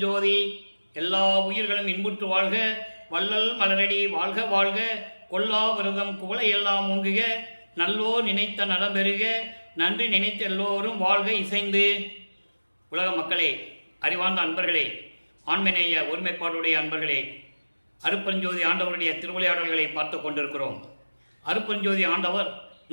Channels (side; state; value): both; inverted; correlation -1.00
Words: எல்லா உயிர்களும் இன்புற்று வாழ்க, வள்ளல் மலரடி வாழ்க வாழ்க, கொல்லா விரதம் குவளை எல்லாம் ஓங்குக, நல்லோ நினைத்த நலம் பெறுக, நன்றி நினைத்த எல்லோரும் வாழ்க இசைந்து. உலக மக்களே, அறிவார்ந்த அன்பர்களே, ஆண்மநேய ஒருமைப்பாடுடைய அன்பர்களே, அருட்பெருஞ்சோதி ஆண்டவருடைய திருவிளையாடல்களை பார்த்து கொண்டிருக்கிறோம். அருட்பெருஞ்சோதி ஆண்டவர்